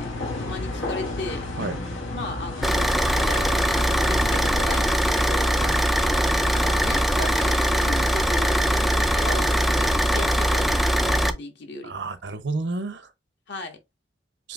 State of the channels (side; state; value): both; normal; correlation 0.86